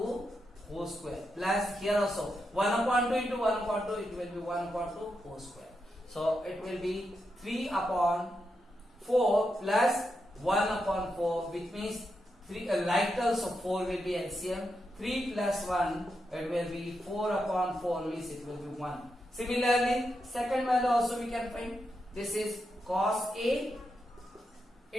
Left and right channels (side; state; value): both; normal; correlation 0.85